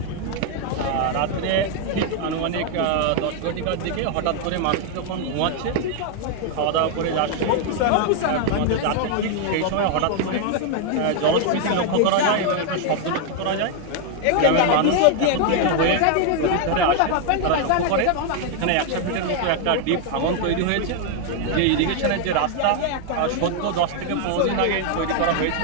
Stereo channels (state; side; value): different; both; correlation 0.00